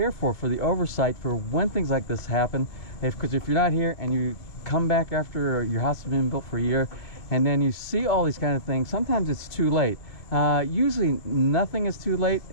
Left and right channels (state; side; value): late; right; 2.4 ms